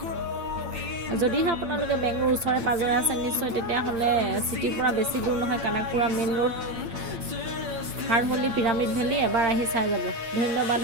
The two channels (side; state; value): left; late; 8.8 ms